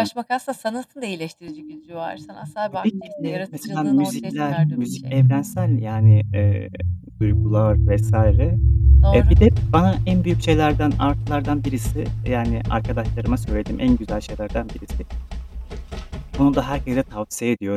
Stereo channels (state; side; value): identical; both; correlation 1.00